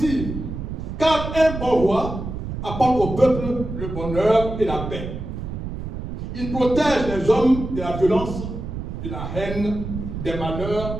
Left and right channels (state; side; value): noise; right; rumble, 6 dB below the sound